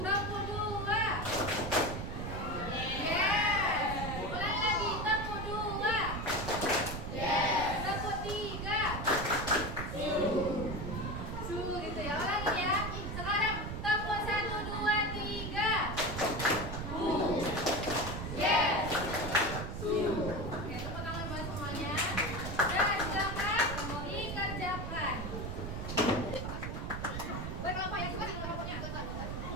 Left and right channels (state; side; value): noise; right; rumble, 5 dB below the sound